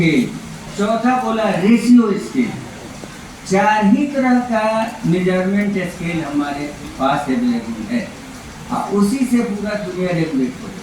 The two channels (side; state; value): both; identical; correlation 1.00